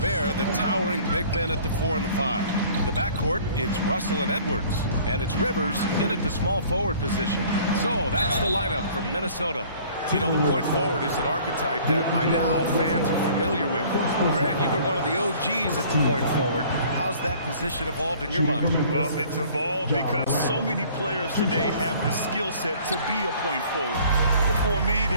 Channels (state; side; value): inverted; both; correlation -0.52